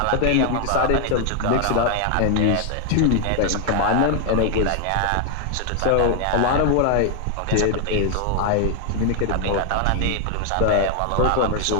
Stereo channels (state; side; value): different; both; correlation 0.00